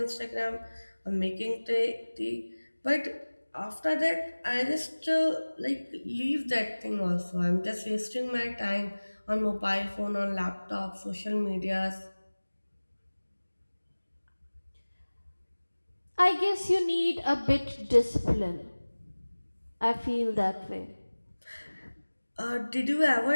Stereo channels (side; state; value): both; inverted; correlation -1.00